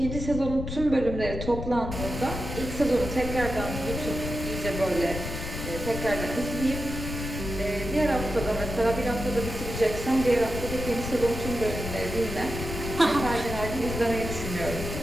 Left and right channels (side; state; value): left; noise; rumble, 6 dB below the sound